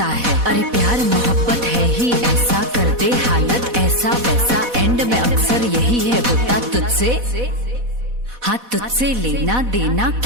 है। अरे प्यार मोहब्बत है ही ऐसा, कर दे हालत ऐसा वैसा, एंड में अक्सर यही है होता तुझसे, हाँ तुझसे लेना देना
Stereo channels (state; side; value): late; left; 4.1 ms